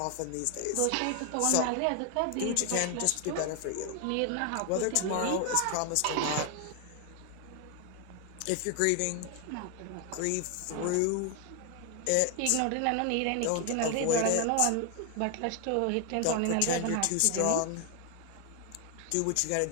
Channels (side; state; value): both; different; correlation 0.01